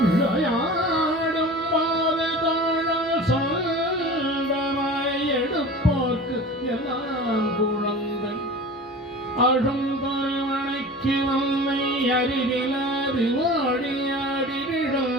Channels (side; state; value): both; normal; correlation 0.37